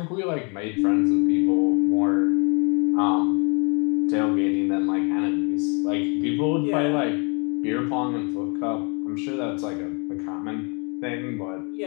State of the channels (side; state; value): right; quieter; 33.7 dB